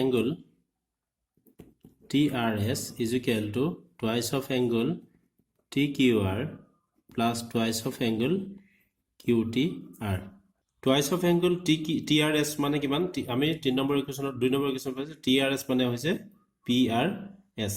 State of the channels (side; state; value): both; identical; correlation 1.00